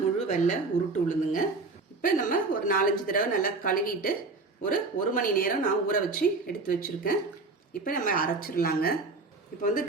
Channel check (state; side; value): quieter; left; 3.7 dB